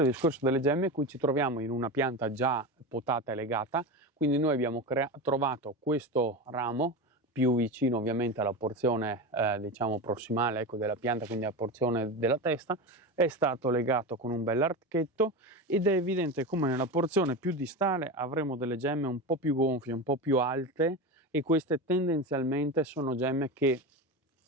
il discorso delle gemme, qui ci troviamo in una pianta già potata e legata, quindi noi abbiamo trovato questo ramo più vicino ovviamente alla porzione diciamo prossimale, ecco, della pianta, quindi alla porzione della testa, è stato legato con un bel archetto ed è evidente come nella porzione più distale avremo delle gemme un po' più gonfie, un po' più alte, e queste tendenzialmente sono gemme che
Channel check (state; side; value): normal; both; correlation 0.22